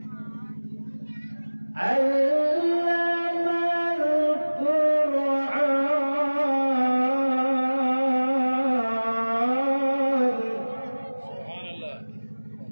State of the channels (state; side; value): inverted; both; correlation -1.00